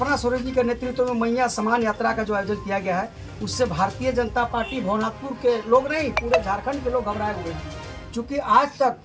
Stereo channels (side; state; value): both; identical; correlation 1.00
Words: सोरेन जी के नेतृत्व में मैया समान यात्रा का जो आयोजन किया गया है, उससे भारतीय जनता पार्टी भवनाथपुर के लोग नहीं, पूरे झारखंड के लोग घबराए हुए हैं। चूँकि आज तक